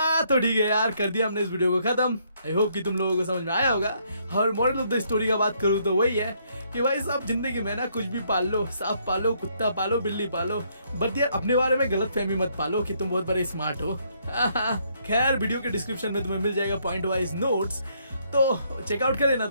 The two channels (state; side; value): inverted; both; correlation -0.70